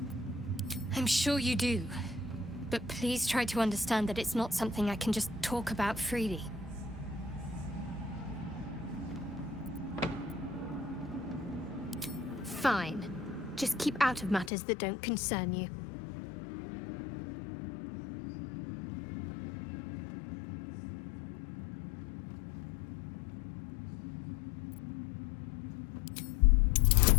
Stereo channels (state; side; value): drops out; right; at 14.5 s